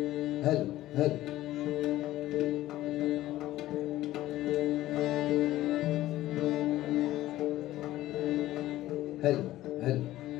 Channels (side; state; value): right; quieter; 15.3 dB